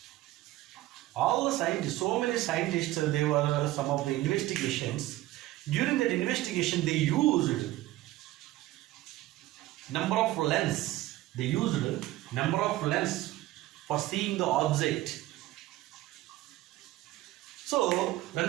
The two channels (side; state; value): left; quieter; 16.4 dB